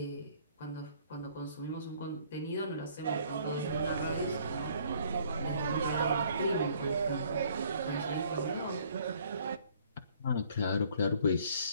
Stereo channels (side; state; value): both; inverted; correlation -0.59